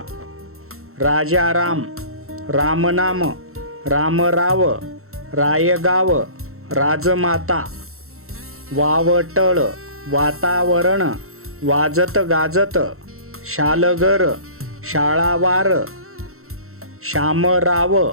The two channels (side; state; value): left; late; 0.63 ms